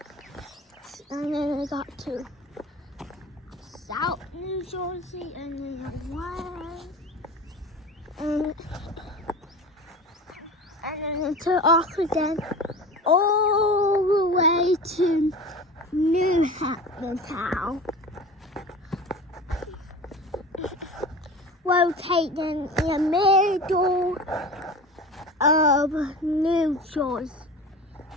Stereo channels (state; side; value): normal; both; correlation 0.34